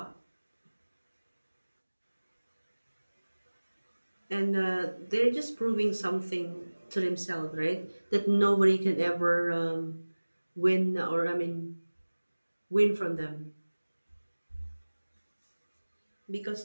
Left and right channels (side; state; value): both; inverted; correlation -1.00